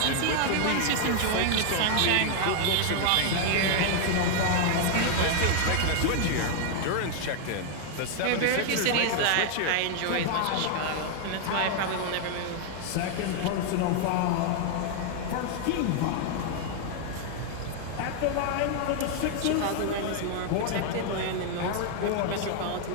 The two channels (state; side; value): different; both; correlation 0.00